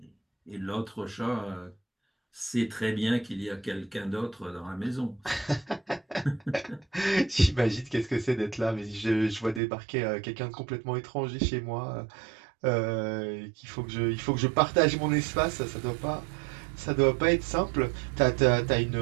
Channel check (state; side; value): drops out; left; at 9.6 s